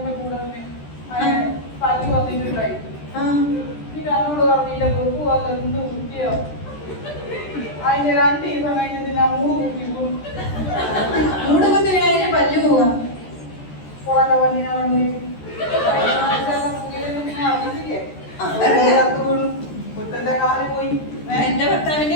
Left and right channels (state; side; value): late; right; 13 ms